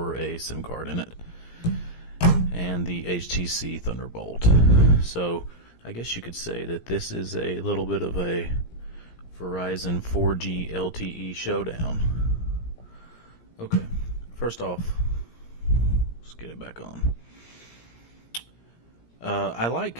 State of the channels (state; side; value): late; right; 17 ms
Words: a SIM card in it, and the HTC Thunderbolt. So I guess you could say that this is a little bit of a Verizon 4G LTE showdown. Okay, first off, let's get it back on. I like